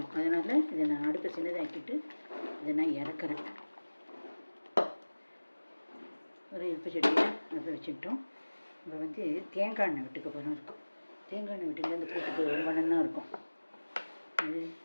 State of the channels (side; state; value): both; inverted; correlation -1.00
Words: அதனால் இதை நான் அடுப்பை சின்னதாக்கிட்டு இதை நான் இறக்குறேன். ஒரு இழுப்பு சட்டியை அடுப்பை வச்சுக்கிட்டோம். இப்போ வந்து தேங்காய் எண்ணெய் விட்டுக்க போகிறோம் இருக்கும். தேங்காய் எண்ணெய் விட்டுங்க அந்த கூட்டுக்கு ரொம்ப நல்லா இருக்கும். இது